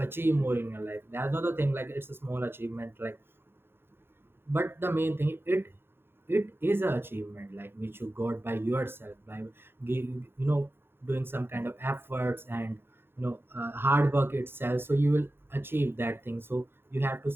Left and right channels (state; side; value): late; left; 0.11 ms